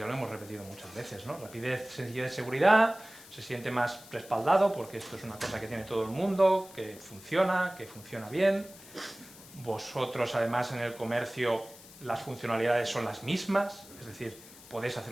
lo hemos repetido muchas veces, ¿no? Rapidez, sencillez, seguridad, se siente más respaldado porque esto es una cosa que tiene todo el mundo, que funciona bien. Vosotros, además, en el comercio las funcionalidades son las mismas, es decir, podéis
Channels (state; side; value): noise; left; hiss, 19 dB below the sound